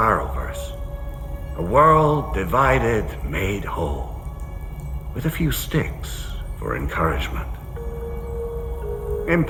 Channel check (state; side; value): identical; both; correlation 1.00